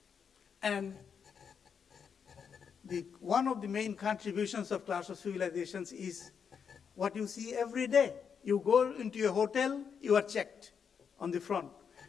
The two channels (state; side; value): quieter; right; 6.8 dB